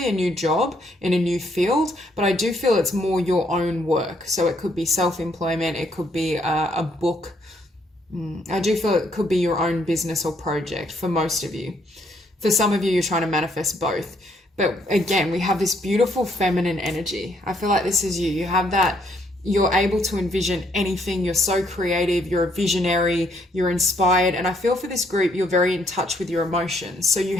a new job in a new field, but I do feel it's more your own work. So it could be self-employment, it could be a book. I do feel it could be your own business or project for most of you. For some of you, you're trying to manifest both. But again, we have this beautiful feminine energy. I feel like this is you. You have that, you're able to envision anything. You're so creative. You're a visionary. You're inspired. And I feel for this group, you're very in touch with your emotions. So you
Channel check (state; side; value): normal; both; correlation 0.70